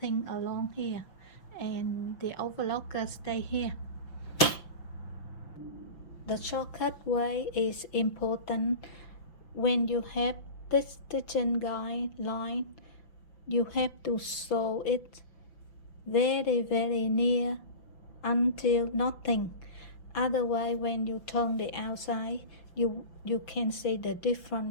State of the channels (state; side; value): late; right; 5.9 ms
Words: along here, and the overlocker stay here. The shortcut way is important. When you have this stitching guideline, you have to sew it very near until nothing. Otherwise, when you turn the outside, you can see the